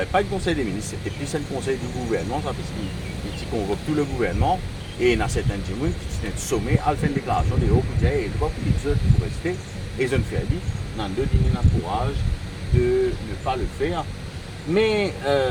Pas le conseil des ministres, c'était plus un conseil du gouvernement, ça, parce qu'il convoque tout le gouvernement. Et il y a certains gens qui sont sommés à faire une déclaration de haut budget et ils doivent pour rester. Et ils ont fait dit, dans deux dîners de courage de ne pas le faire. Mais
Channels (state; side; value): identical; both; correlation 1.00